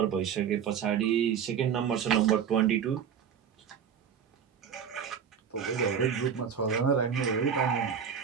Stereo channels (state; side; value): quieter; left; 7.7 dB